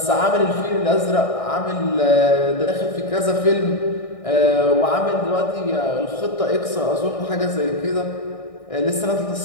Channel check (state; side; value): late; right; 1.6 ms